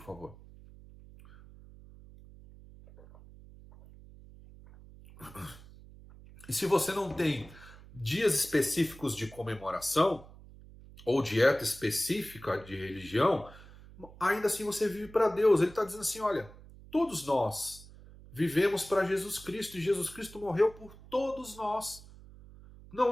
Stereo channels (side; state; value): right; noise; hum, 20 dB below the sound